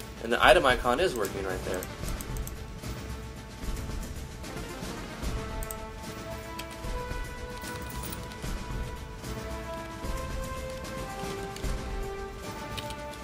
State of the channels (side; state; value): both; identical; correlation 1.00